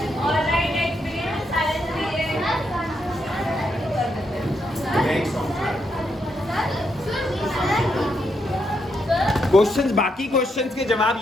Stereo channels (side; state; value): both; normal; correlation 0.80